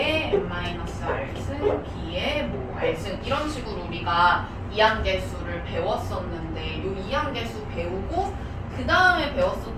n-r승, B의 뭐 r승 이런 식으로 우리가 이항계수를 배웠었는데 이 이항계수 배우고 그 다음에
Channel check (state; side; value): identical; both; correlation 1.00